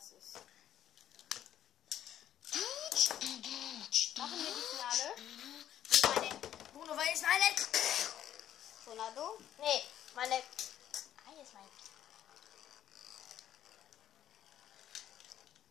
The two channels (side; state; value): right; quieter; 11.1 dB